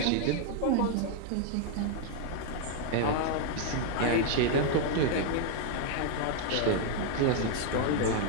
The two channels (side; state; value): both; different; correlation 0.00